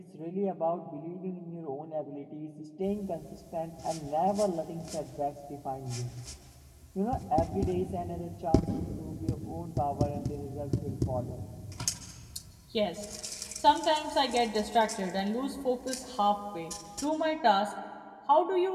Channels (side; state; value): both; identical; correlation 1.00